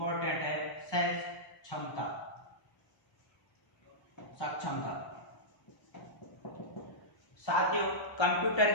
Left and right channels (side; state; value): right; late; 1.0 ms